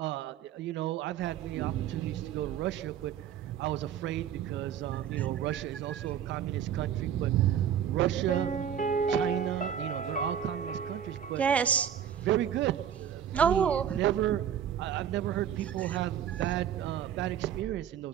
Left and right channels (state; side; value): quieter; left; 9.2 dB